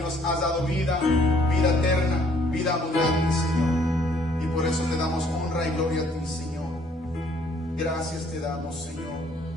nos has dado vida, vida eterna, vida abundante, Señor. Y por eso te damos honra y gloria a ti, Señor. Gracias te damos, Señor.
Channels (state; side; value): normal; both; correlation 0.63